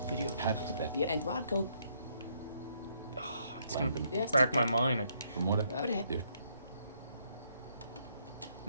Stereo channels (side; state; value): both; inverted; correlation -0.72